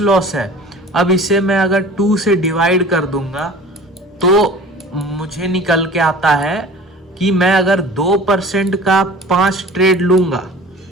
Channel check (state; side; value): normal; both; correlation 0.42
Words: लॉस है, अब इसे मैं अगर 2 से डिवाइड कर दूंगा तो मुझे निकल के आता है कि मैं अगर 2% का 5 ट्रेड लूंगा,